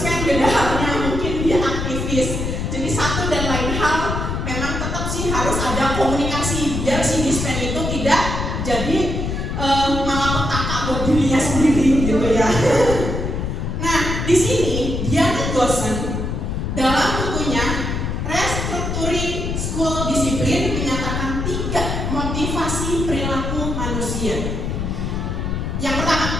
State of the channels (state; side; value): noise; left; rumble, 2 dB below the sound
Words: beda halnya, mungkin dia aktivis. Jadi satu dan lain hal memang tetap sih harus ada komunikasi biar si dispen itu tidak jadi malapetaka buat dirinya sendiri gitu ya. Nah di sini Diana Gosen dalam bukunya Restructuring School Discipline menyatakan 3 motivasi perilaku manusia. Yang pertama,